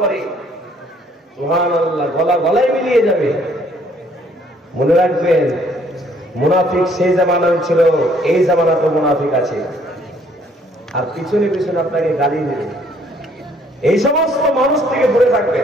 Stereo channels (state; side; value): normal; both; correlation 0.63